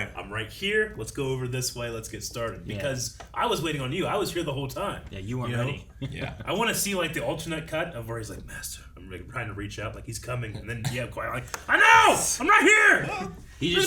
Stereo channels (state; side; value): identical; both; correlation 1.00